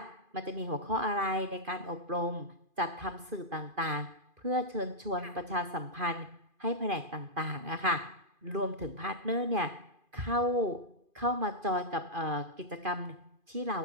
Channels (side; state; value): left; late; 2.5 ms